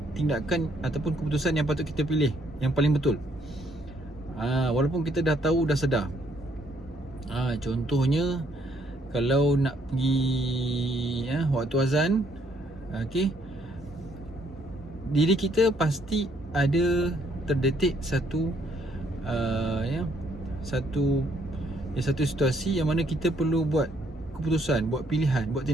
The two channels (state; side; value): normal; both; correlation 0.69